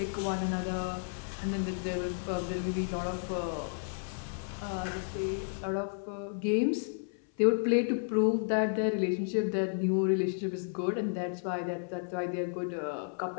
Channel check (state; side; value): silent; right; 56 dB below the other